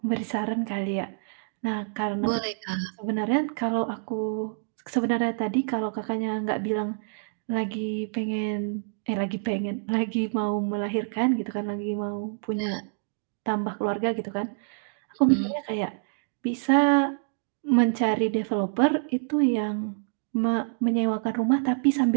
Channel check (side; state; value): left; silent; digital silence